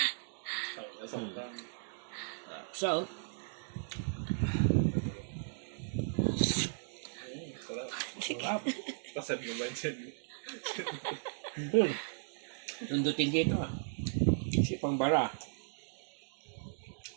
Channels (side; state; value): left; silent; digital silence